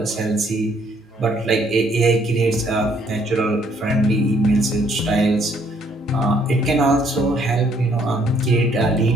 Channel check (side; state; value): both; normal; correlation 0.66